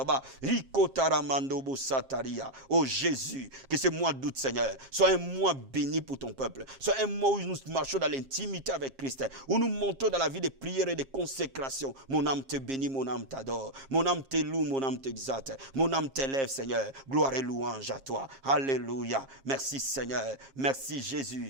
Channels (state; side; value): late; left; 7.5 ms